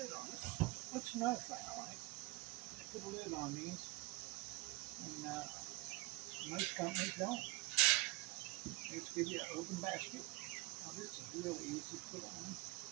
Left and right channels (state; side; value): quieter; left; 22.8 dB